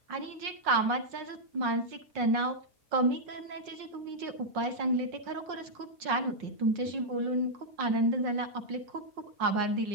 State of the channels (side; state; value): left; late; 5.5 ms